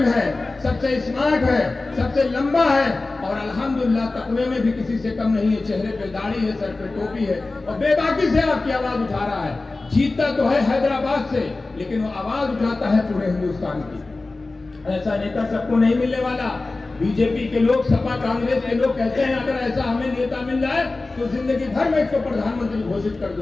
है, सबसे स्मार्ट है, सबसे लंबा है, और अल्हम्दुलिल्लाह तकवे में भी किसी से कम नहीं है। चेहरे पे दाढ़ी है, सर पे टोपी है, और बेबाकी से आपकी आवाज उठा रहा है। जीतता तो है हैदराबाद से, लेकिन वो आवाज उठाता है पूरे हिंदुस्तान की। ऐसा नेता सबको नहीं मिलने वाला। बीजेपी के लोग, सपा कांग्रेस के लोग कहते हैं अगर ऐसा हमें नेता मिल जाए तो जिंदगी भर में इसको प्रधानमंत्री घोषित कर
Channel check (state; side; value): quieter; right; 3.3 dB